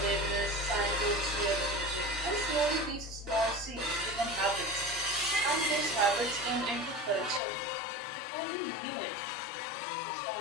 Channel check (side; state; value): right; drops out; at 7.4 s